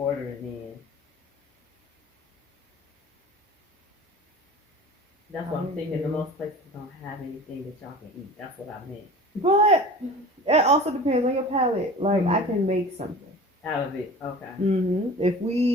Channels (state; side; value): normal; both; correlation 0.39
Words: in. That's what I'm thinking. The most places don't have anything that y'all can eat. That's what I meant. But it also depends on your palate. Like, I can make something out of it. Okay. If